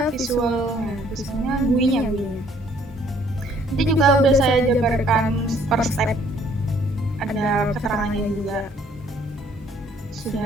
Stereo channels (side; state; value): both; normal; correlation 0.61